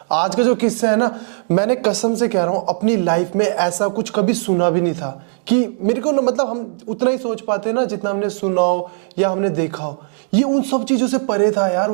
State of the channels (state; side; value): silent; left; 67 dB below the other